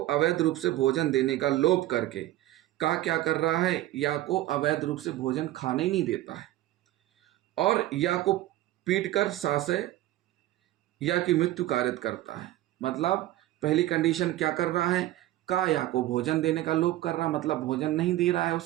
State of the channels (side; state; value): left; quieter; 15.2 dB